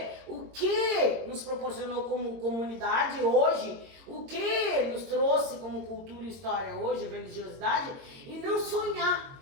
o que nos proporcionou como comunidade hoje, o que nos trouxe como cultura e história hoje, religiosidade, e não sonhar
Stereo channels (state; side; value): late; left; 22 ms